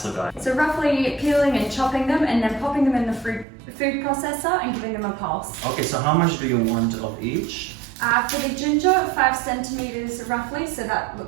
guy. So roughly peeling and chopping them and then popping them in the food processor and giving them a pulse. Okay, so how much do you want of each? For the ginger, 5 centimeters roughly, so that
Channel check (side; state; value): left; drops out; at 3.5 s